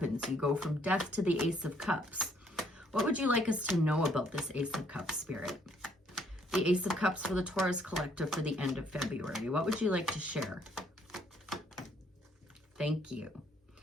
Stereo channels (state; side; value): normal; both; correlation 0.66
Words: You go from Death to the Ace of Cups. What would you like us to know about this Ace of Cups, Spirit? The Ace of Cups for the Taurus Collective for the end of February. What would you like to share? Thank you.